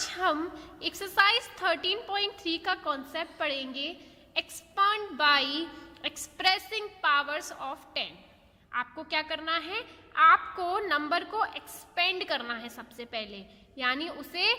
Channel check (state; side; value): identical; both; correlation 1.00